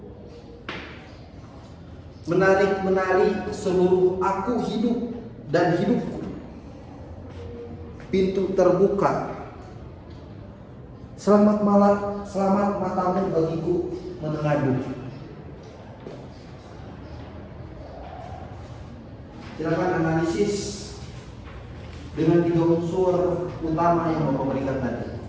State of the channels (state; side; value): identical; both; correlation 1.00